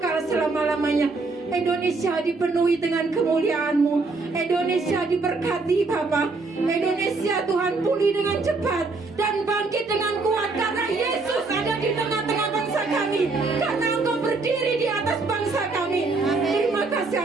selama-lamanya. Indonesia dipenuhi dengan kemuliaan-Mu. Indonesia diberkati Bapa. Indonesia Tuhan pulih dengan cepat dan bangkit dengan kuat karena Yesus ada di tengah-tengah bangsa kami. Karena Engkau berdiri di atas bangsa kami. Terima kasih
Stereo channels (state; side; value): quieter; left; 3.8 dB